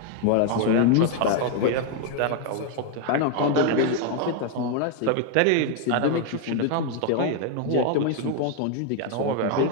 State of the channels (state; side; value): different; both; correlation 0.01